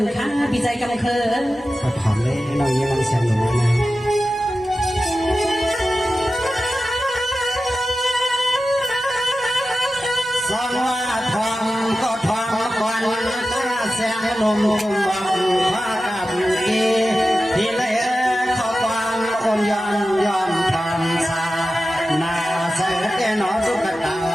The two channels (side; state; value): both; normal; correlation 0.93